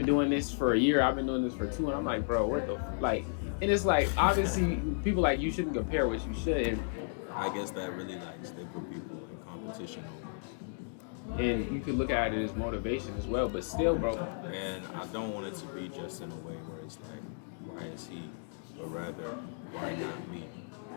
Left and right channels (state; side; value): silent; right; digital silence